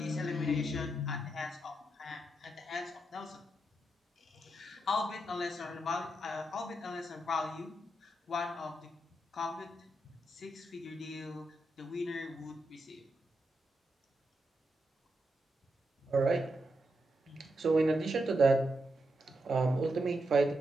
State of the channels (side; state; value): both; normal; correlation 0.84